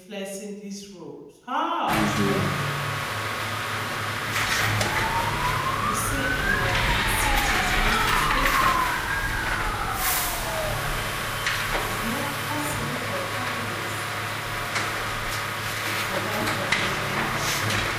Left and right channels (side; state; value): both; identical; correlation 1.00